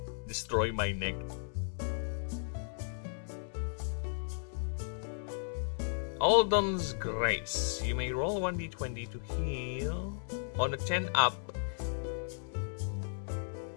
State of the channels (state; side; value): silent; right; digital silence